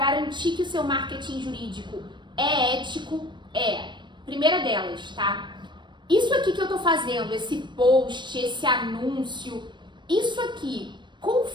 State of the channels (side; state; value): left; late; 0.22 ms